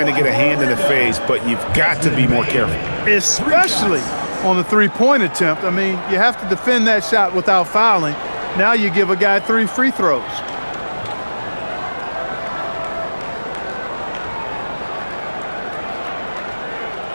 to get a hand in the face, but you've got to be more careful. Especially on the three-point attempt. I mean, you have to defend that shot without fouling. Now you give a guy 3 free throws.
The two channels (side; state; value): both; inverted; correlation -1.00